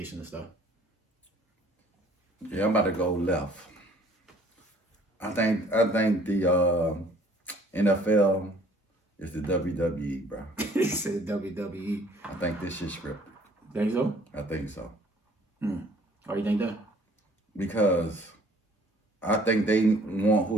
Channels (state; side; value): normal; both; correlation 0.56